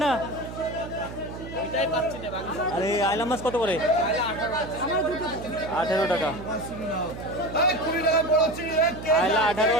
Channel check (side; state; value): right; noise; hum, 11 dB below the sound